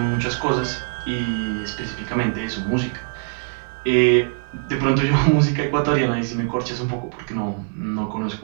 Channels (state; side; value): silent; left; digital silence